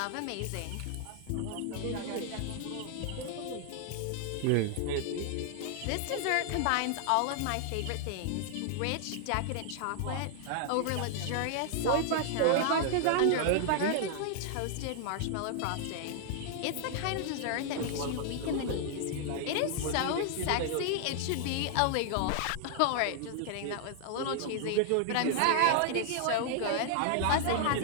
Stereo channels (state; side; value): different; both; correlation 0.00